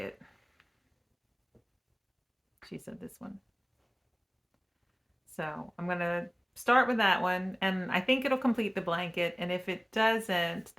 She said this one. So I'm going to start with that one, and I think it'll complete the blanket, and if it doesn't,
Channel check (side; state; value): both; identical; correlation 1.00